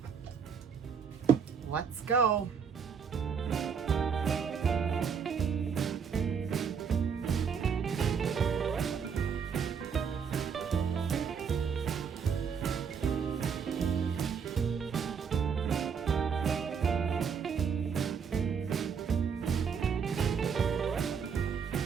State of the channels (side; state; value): left; quieter; 6.6 dB